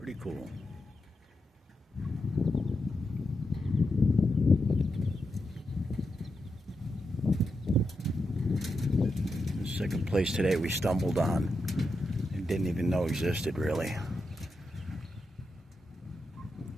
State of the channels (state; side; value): normal; both; correlation 0.86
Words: cool. The second place today we stumbled on and didn't even know existed, really.